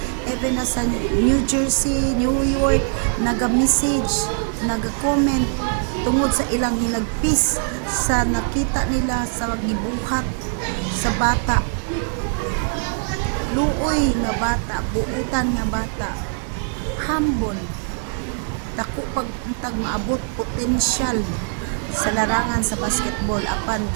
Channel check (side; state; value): left; silent; 61 dB below the other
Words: even na sa New Jersey, New York, naga-message, naga-comment tungod sa ilang hinagpis sa nakita nila sa gibuhat sa bata, luoy nga bata, buutan nga bata, humble, dako pag maabot potensyal sa larangan sa basketball, apan